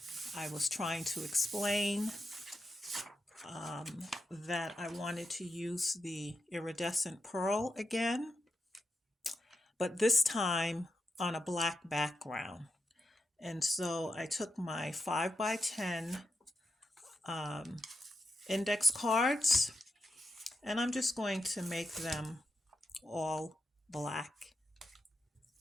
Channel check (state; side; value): normal; both; correlation 0.88